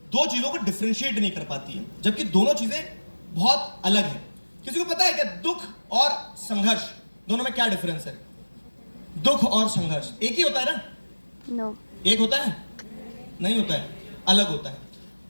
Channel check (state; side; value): inverted; both; correlation -1.00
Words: दो चीजों को डिफरेंशिएट नहीं कर पाती है, जबकि दोनों चीजें बहुत अलग हैं। किसी को पता है क्या दुख और संघर्ष दोनों में क्या डिफरेंस है? दुख और संघर्ष एक ही होता है ना? नो, एक होता है? नहीं होता है, अलग होता है।